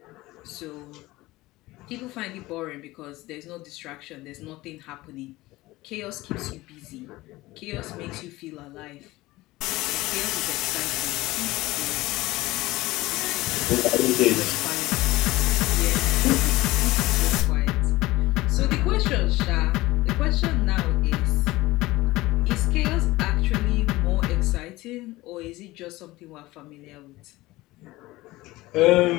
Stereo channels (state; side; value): quieter; right; 19.0 dB